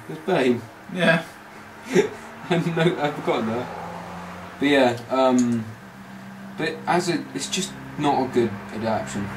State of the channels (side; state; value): both; identical; correlation 1.00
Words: There's Bane. Yeah. I've forgotten that. But yeah, but it's just not a good adaptation.